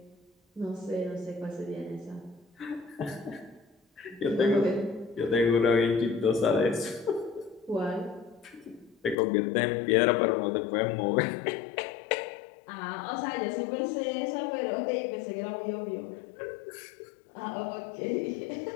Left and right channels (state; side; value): drops out; right; at 9.2 s